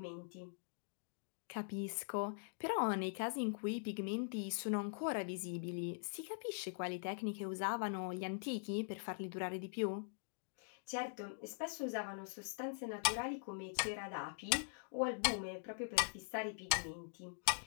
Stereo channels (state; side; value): silent; right; digital silence